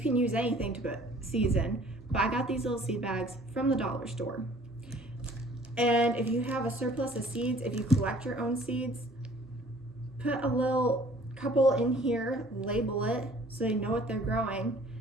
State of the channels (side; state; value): both; normal; correlation 0.54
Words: can use anything to put seeds in, but I got these little seed bags from the dollar store. And if you have a surplus of seeds, if you collect your own seeds, put a little couple in here, label it so they know what they're growing,